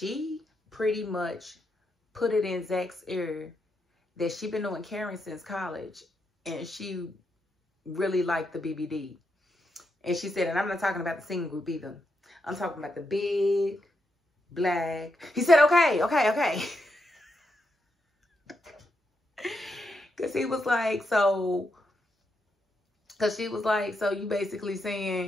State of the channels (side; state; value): both; normal; correlation 0.83